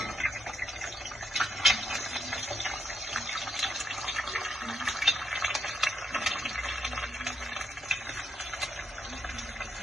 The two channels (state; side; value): normal; both; correlation 0.78